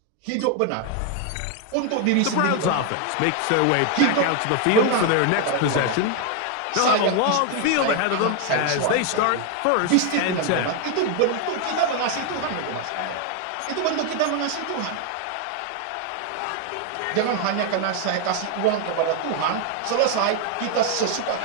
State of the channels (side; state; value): both; different; correlation 0.00